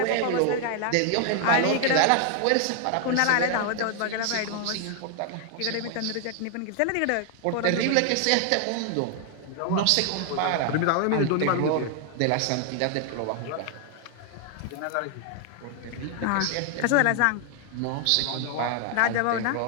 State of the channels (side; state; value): both; different; correlation 0.00